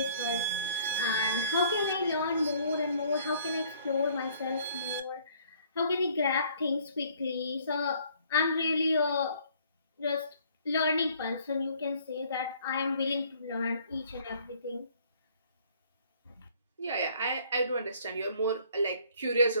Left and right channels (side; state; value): both; inverted; correlation -0.59